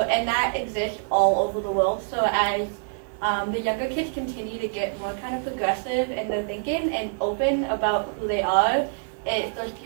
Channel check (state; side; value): silent; left; digital silence